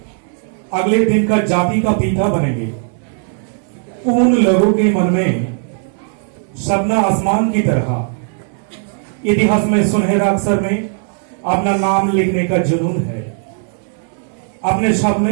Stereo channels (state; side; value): silent; left; 61 dB below the other